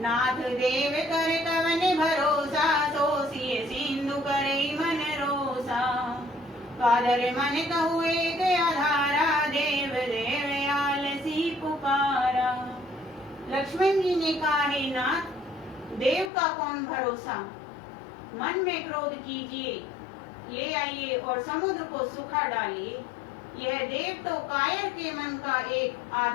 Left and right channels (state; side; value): drops out; right; at 16.3 s